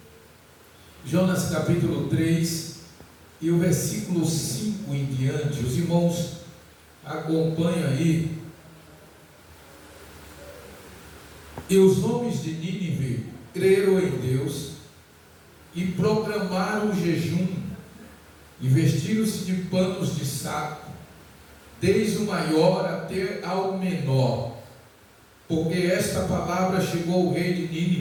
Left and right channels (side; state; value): both; identical; correlation 1.00